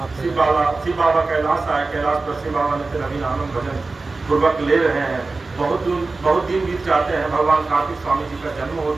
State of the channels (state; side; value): quieter; left; 3.6 dB